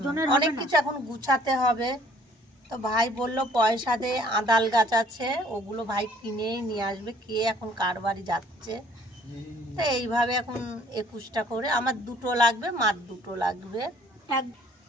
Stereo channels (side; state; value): both; normal; correlation 0.58